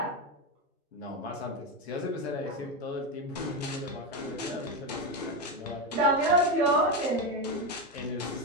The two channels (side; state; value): both; normal; correlation 0.12